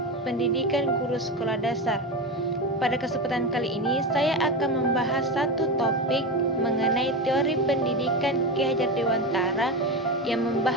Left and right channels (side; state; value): both; normal; correlation 0.19